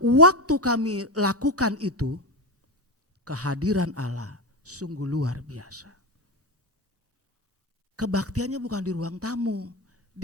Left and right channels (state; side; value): normal; both; correlation 0.13